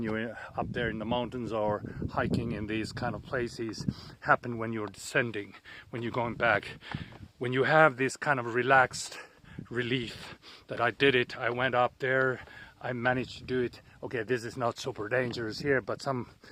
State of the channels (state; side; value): identical; both; correlation 1.00